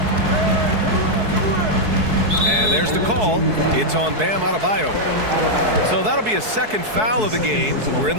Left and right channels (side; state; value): left; late; 4.7 ms